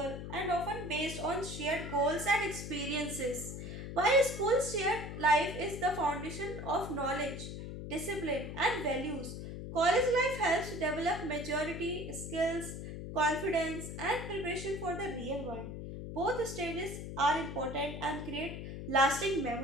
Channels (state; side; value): noise; left; hum, 8 dB below the sound